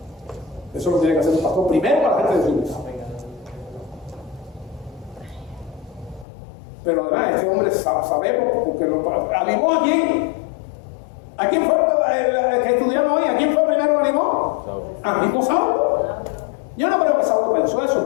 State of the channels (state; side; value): drops out; right; at 6.2 s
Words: Eso lo tiene que hacer un pastor primero para la gente de su iglesia. Pero además, este hombre sabemos porque animó a quién. ¿A quién fue el que estudiamos hoy? ¿A quién fue primero que animó? A mismo Saulo. Yo no creo que Saulo pensó eso,